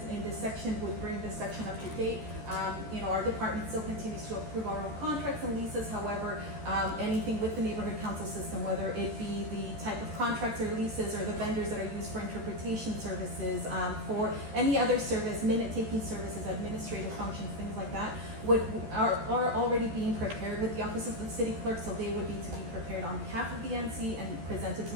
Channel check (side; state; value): left; late; 13 ms